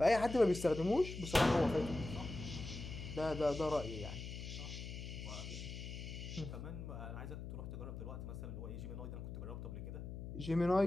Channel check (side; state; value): left; noise; hum, 8 dB below the sound